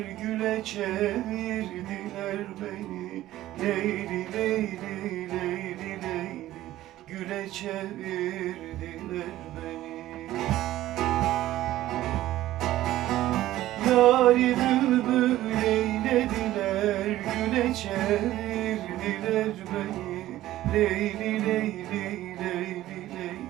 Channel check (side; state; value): left; quieter; 14.8 dB